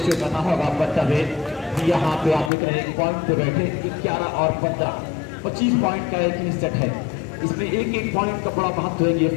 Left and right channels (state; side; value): drops out; right; at 2.5 s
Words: शो करना होगा। बतावे यहाँ पे आप देख रहे हैं पॉइंट पे बैठे 11 और 15 25 पॉइंट का एक ही सेट है। इसमें एक पॉइंट का बड़ा महत्व है। ये